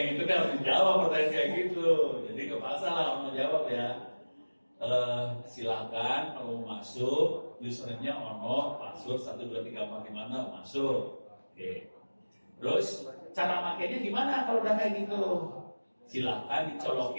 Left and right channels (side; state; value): both; inverted; correlation -1.00